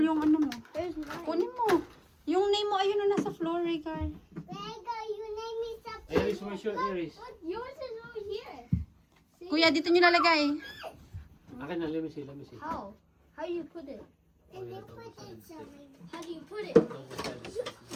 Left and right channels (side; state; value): both; identical; correlation 1.00